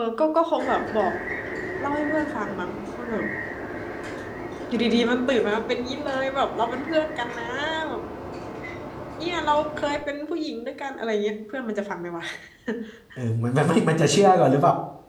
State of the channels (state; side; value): identical; both; correlation 1.00